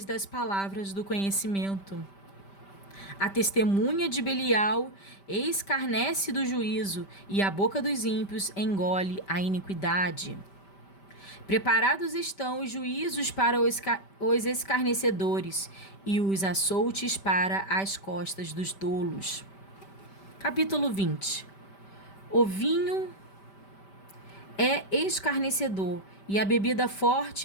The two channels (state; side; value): late; right; 5.1 ms